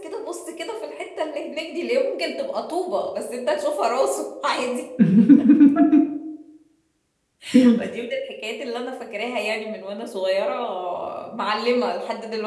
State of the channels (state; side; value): identical; both; correlation 1.00